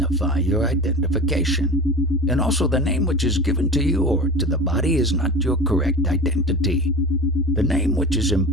your identification, and also the name which is given to you or to the body is not your correct identity. The name which is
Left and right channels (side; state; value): both; normal; correlation 0.31